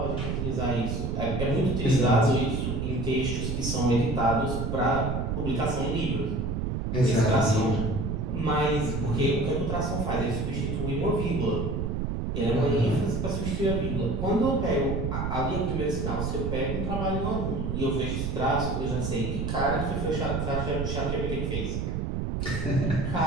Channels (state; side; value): noise; right; rumble, 1 dB below the sound